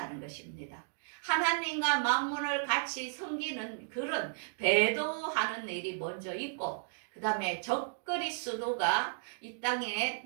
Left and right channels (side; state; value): left; silent; digital silence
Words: 것입니다. 하나님과 만몬을 같이 섬기는 그런 배도하는 일이 먼저 있고 그 다음에 적그리스도가 이 땅에